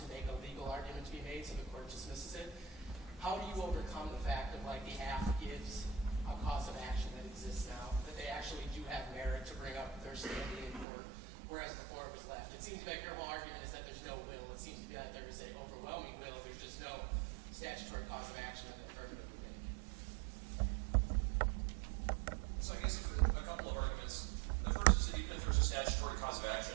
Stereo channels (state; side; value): drops out; left; at 10.9 s